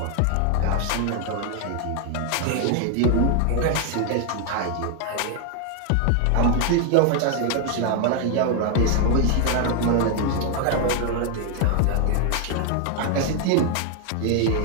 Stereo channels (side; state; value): both; different; correlation 0.00